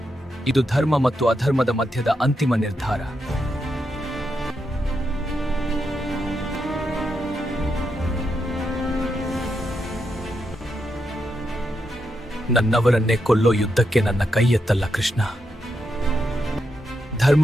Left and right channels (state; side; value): normal; both; correlation 0.83